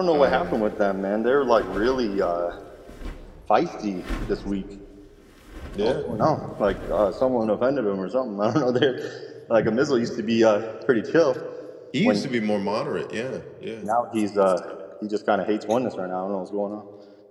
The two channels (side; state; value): both; identical; correlation 1.00